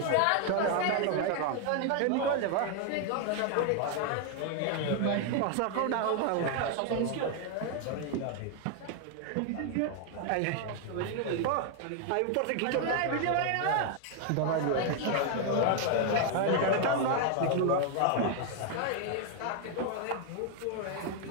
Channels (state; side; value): different; both; correlation 0.00